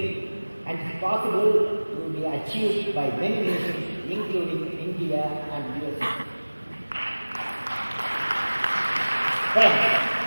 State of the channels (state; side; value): inverted; both; correlation -1.00